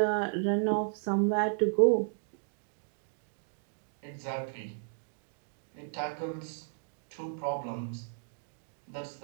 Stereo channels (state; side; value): silent; left; digital silence